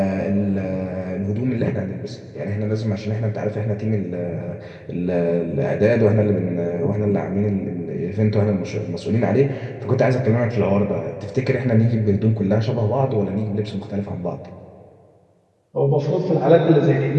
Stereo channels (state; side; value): identical; both; correlation 1.00